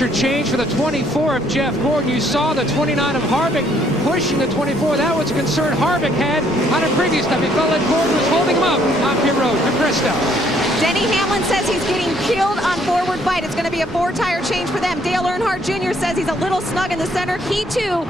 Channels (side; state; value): both; normal; correlation 0.66